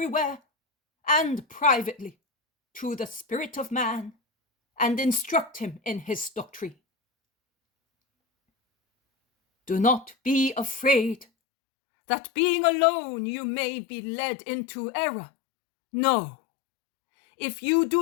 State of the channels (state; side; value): drops out; right; at 11.2 s